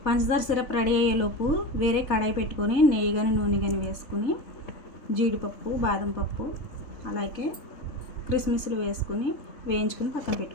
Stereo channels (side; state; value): right; late; 3.3 ms